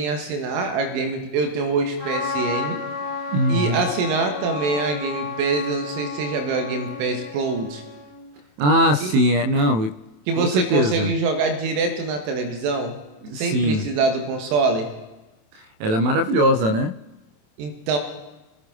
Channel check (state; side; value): late; left; 27 ms